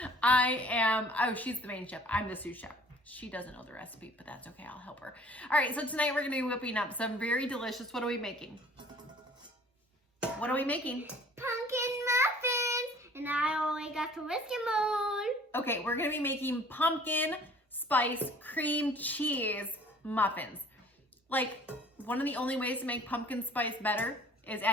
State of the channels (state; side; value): normal; both; correlation 0.52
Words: She's the main chef. I'm the sous chef. She doesn't know the recipe, but that's okay. I'll help her. All right, so tonight we're gonna be whipping up some very delicious, what are we making? What are we making? Pumpkin muffins, and I only got the whiskey mold. Okay, we're gonna be making pumpkin spice cream cheese muffins. Like, one of the only ways to make pumpkin spice better is